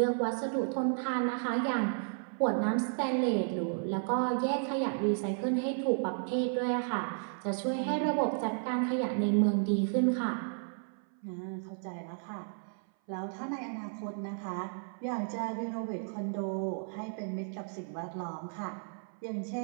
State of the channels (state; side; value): silent; left; 56 dB below the other